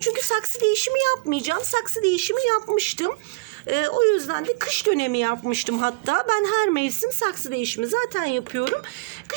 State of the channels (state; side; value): quieter; left; 25.1 dB